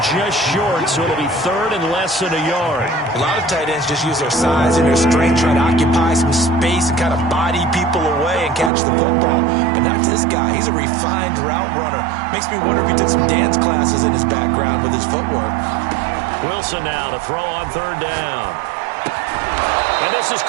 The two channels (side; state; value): left; drops out; at 8.7 s